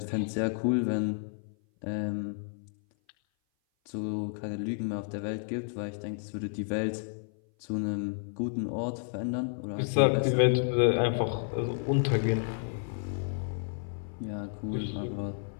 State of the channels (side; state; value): right; silent; 56 dB below the other